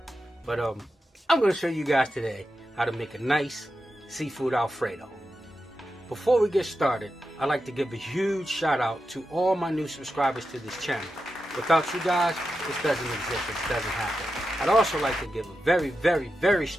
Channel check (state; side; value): normal; both; correlation 0.89